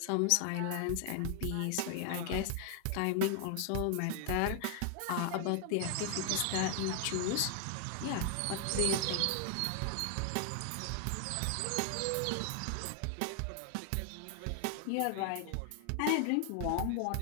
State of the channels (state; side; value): different; both; correlation 0.00